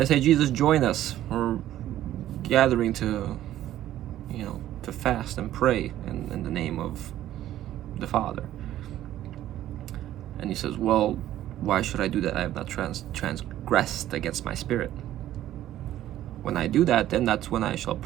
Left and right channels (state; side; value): quieter; left; 13.0 dB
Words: they say, Jesus, join us. We're gathering to fast and pray in the name of the Father. And he says, well, why should I do that? I have not transgressed against my spirit. When I do that, then that's when I shall